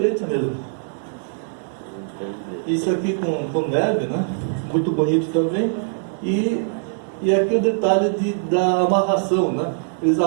mesmo. Isso aqui com neve, né? Muito bonito também. E aqui o detalhe da amarração, né? Eles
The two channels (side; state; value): left; silent; digital silence